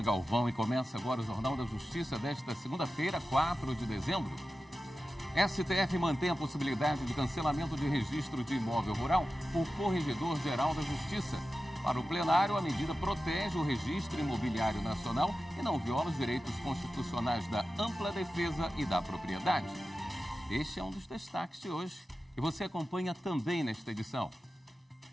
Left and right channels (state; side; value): normal; both; correlation 0.94